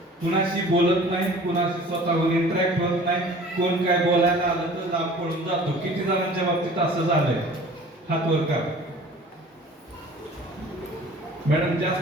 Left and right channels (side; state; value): both; normal; correlation 0.46